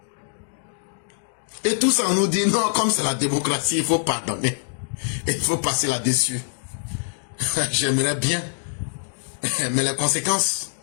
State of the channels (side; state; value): right; silent; digital silence